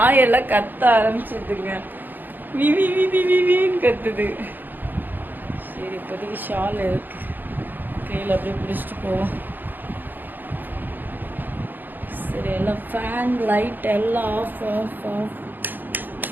கத்த ஆரம்பிச்சிதுங்க. விவி விவி விவின்னு கத்துது. சரி, இப்போதைக்கு ஷால் இருக்கு, கையில் அப்படியே பிடிச்சிட்டு போவோம். சரி, எல்லாம் ஃபேன் லைட் எல்லாம் ஆஃப் ஆஃப் ஆஃப்.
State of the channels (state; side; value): late; left; 0.089 ms